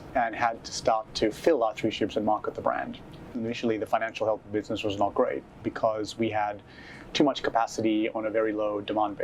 and had to start to fill our 3 ships and market the brand. Initially, the financial health of the business was not great because we had too much capacity on a very low demand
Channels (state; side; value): identical; both; correlation 1.00